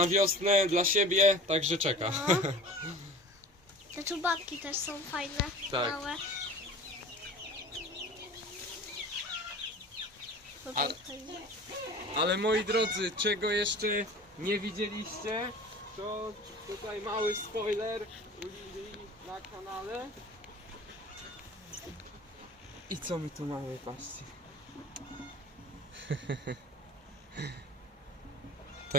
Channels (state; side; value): normal; both; correlation 0.40